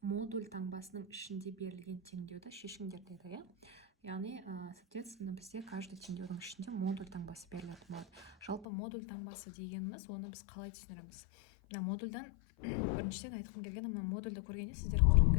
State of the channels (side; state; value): right; drops out; at 8.7 s